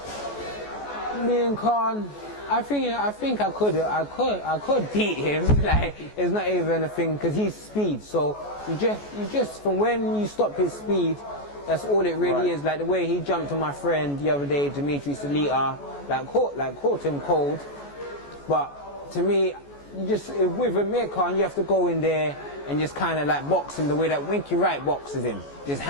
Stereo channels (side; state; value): right; late; 14 ms